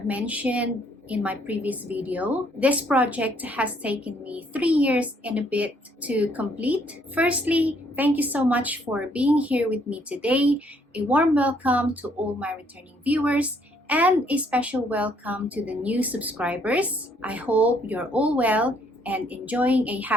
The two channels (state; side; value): normal; both; correlation 0.67